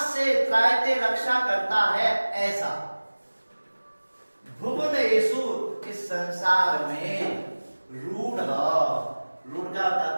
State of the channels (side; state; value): both; inverted; correlation -1.00